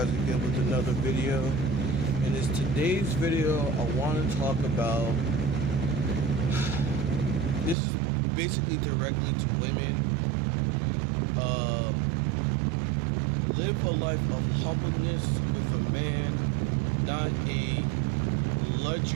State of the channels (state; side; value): drops out; left; at 7.8 s